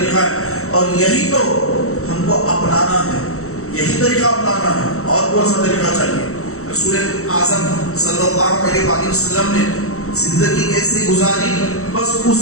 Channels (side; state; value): right; late; 0.63 ms